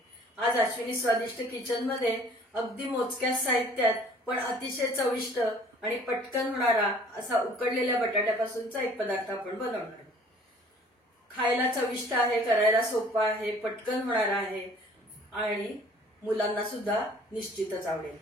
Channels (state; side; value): normal; both; correlation 0.53